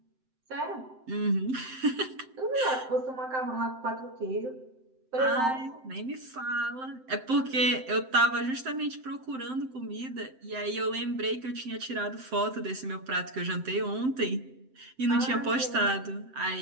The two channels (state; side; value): late; left; 7.7 ms